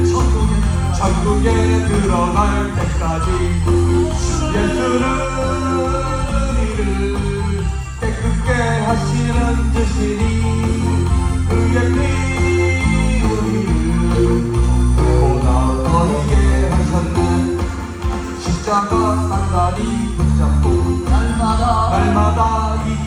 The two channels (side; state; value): both; identical; correlation 1.00